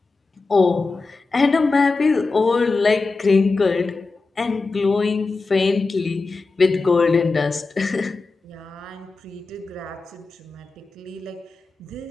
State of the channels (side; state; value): right; quieter; 3.8 dB